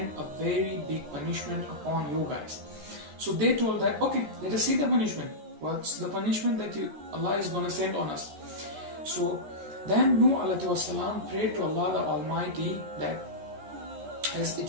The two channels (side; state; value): left; late; 13 ms